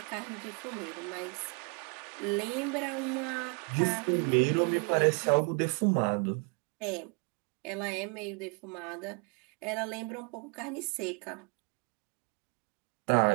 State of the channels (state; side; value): quieter; left; 33.9 dB